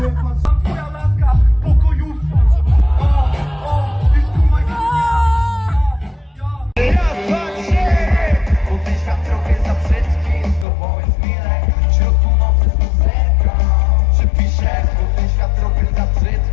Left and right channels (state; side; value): drops out; right; at 10.7 s